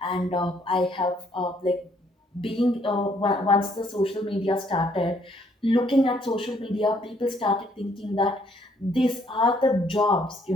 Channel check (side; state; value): both; normal; correlation 0.67